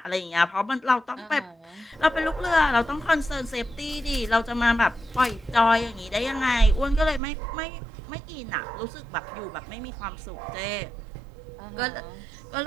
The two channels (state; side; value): drops out; left; at 7.2 s